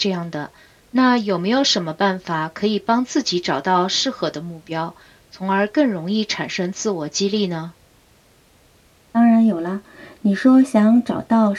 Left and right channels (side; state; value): both; identical; correlation 1.00